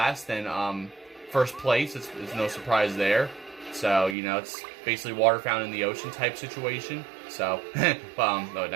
than first place. It's no surprise there. So, it's basically water found in the ocean type situation. So, oh,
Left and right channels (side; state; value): left; drops out; at 4.2 s